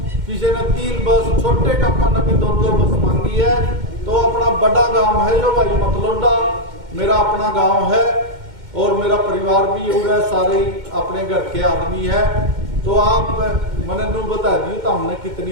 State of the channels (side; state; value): left; late; 2.1 ms